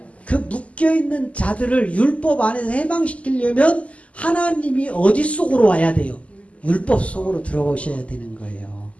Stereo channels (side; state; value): right; late; 0.065 ms